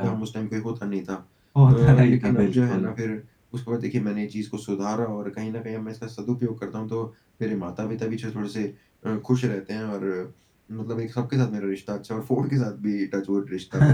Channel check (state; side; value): identical; both; correlation 1.00